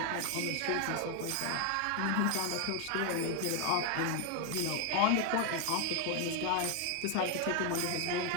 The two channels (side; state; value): both; different; correlation 0.01